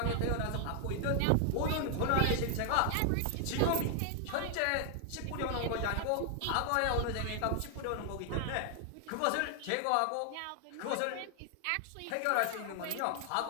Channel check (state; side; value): different; both; correlation 0.00